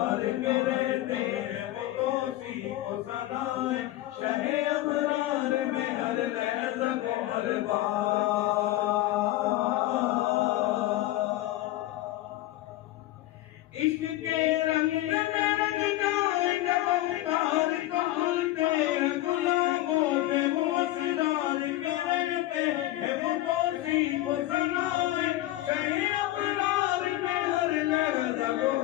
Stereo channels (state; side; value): quieter; right; 16.0 dB